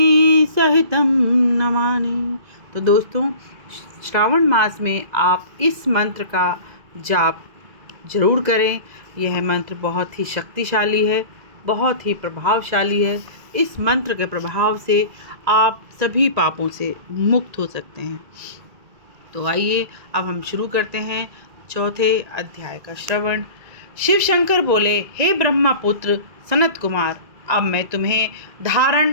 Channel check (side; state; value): left; late; 2.0 ms